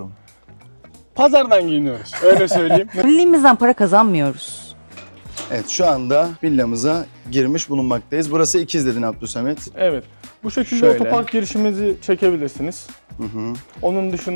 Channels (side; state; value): both; inverted; correlation -1.00